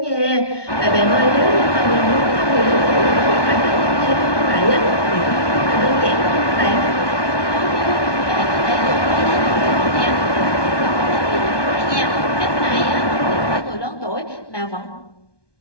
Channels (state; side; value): late; right; 1.2 ms